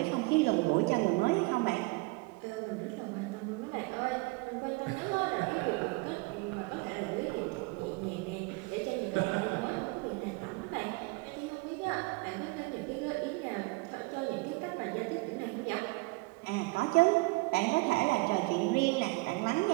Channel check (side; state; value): left; quieter; 26.4 dB